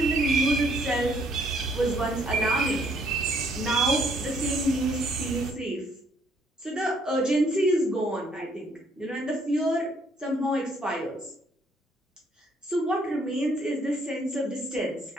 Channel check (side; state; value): both; normal; correlation 0.67